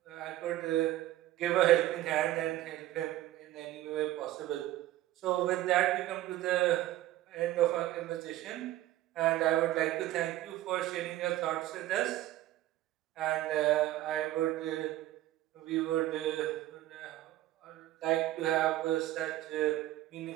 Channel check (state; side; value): quieter; left; 14.9 dB